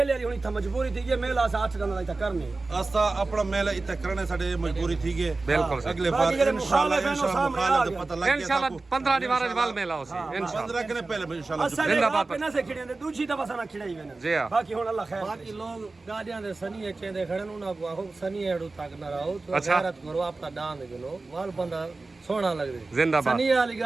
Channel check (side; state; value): left; quieter; 3.5 dB